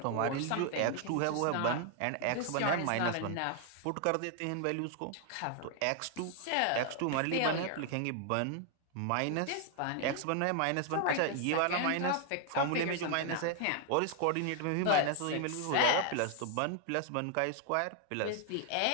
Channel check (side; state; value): both; different; correlation 0.00